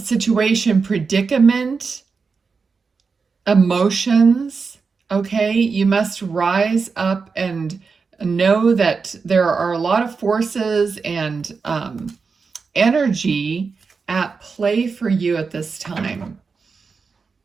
predicament, emotions. Okay, you must rise up and know that there are a lot of forces and energy at play for you at this time.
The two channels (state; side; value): quieter; left; 5.0 dB